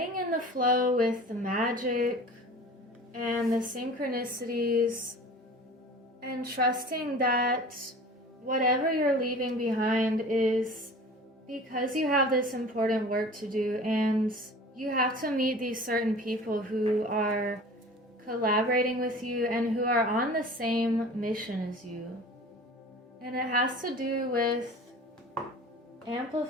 in the flow with the magic and the synchronicities, and trusting that whatever you're leaving behind is because you have this important work to do, and you have to meet these certain people who are collaborating with you and who are on the same mission as you. And it has to do with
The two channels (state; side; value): normal; both; correlation 0.41